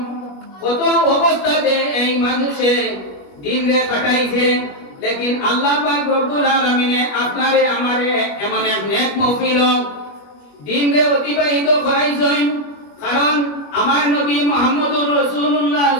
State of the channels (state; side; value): late; right; 21 ms